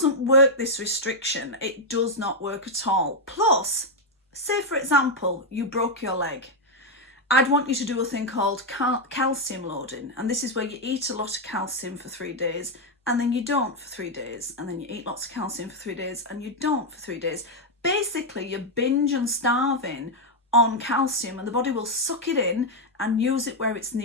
work, this restriction. It does not work at all. Plus, say for example, you broke your leg. I'd want you to do a thing called calcium loading. And this is where you eat a lot of calcium for 3 days and then you don't for 3 days. And then you eat lots of calcium for 3 days and you don't for 3 days. Basically, you're binge and starving on calcium, and the body will suck it in and use it where it's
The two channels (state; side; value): normal; both; correlation 0.01